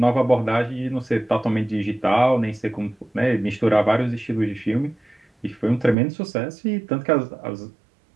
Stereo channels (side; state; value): left; drops out; at 6.0 s